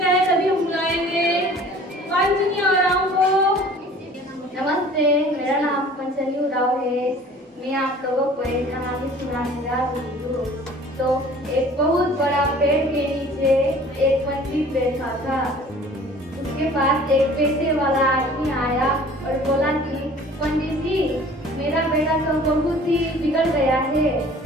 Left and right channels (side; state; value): both; normal; correlation 0.48